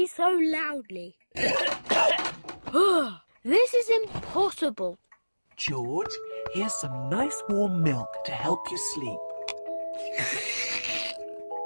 so loudly. This is impossible. George, here's some nice warm milk to help you sleep.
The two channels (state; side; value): inverted; both; correlation -1.00